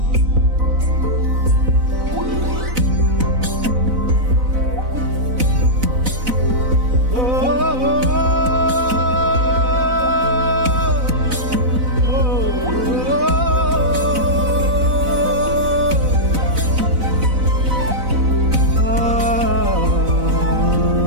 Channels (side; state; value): left; late; 4.0 ms